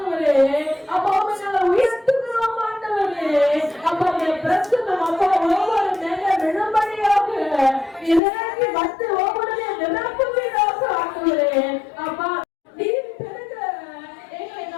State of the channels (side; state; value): right; drops out; at 8.2 s